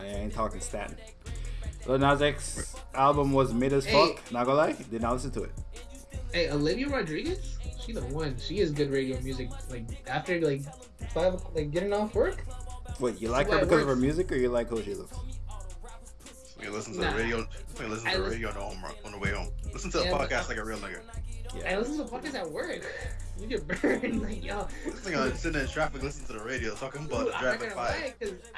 ain't talking Staten. Lil Nas X album was mid as fuck. Not gonna lie, did not listen to it. Hey, Olivia Rodriguez, she the one. She is good radio music. Like after like 5, like getting off work. Wait, you like her because of her music, or you like who she looks? We listen to the radio. We listen to the radio on the way home. Listen to a podcast like a real nigga. I listen to podcasts at work. You get burned, like yo. This nigga sitting in traffic, listening to the radio, talking about Dude, driving by.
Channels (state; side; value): identical; both; correlation 1.00